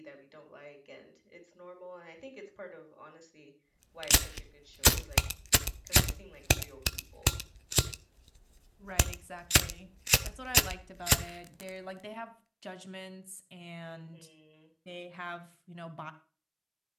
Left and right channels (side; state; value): both; identical; correlation 1.00